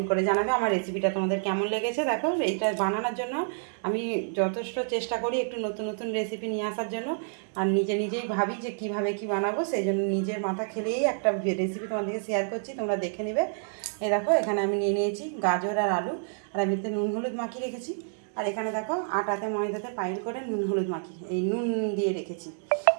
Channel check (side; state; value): left; silent; digital silence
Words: করে জানাবে আমার রেসিপিটা তোমাদের কেমন লেগেছে। দেখো এইটা বানানোর জন্য আমি যথেষ্ট চেষ্টা করি একটু নতুন নতুন রেসিপি নিয়ে আসার জন্য। আর নিজেই ভাবি যে কীভাবে কী বানাবো, সেই জন্য নিজের মাথা খেলেই একটা রেসিপি তোমাদেরকে শেয়ার করছি, তোমরা দেখে নেবে। এই দেখো এখানে আমি নিয়ে নিয়েছি গাজর আর আলু, আর আমি এতে নুন হলুদ মাখিয়ে রেখেছি। আর এখানে দেখো আটাতে ময়দাতে পাইল করে নুন হলুদ মাখি এই নুন দিয়ে রেখেছি।